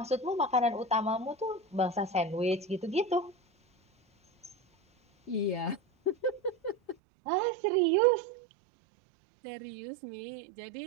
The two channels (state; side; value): drops out; left; at 7.0 s